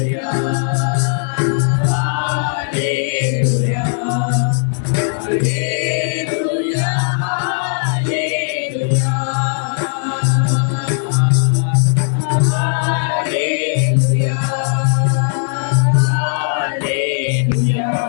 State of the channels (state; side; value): silent; right; digital silence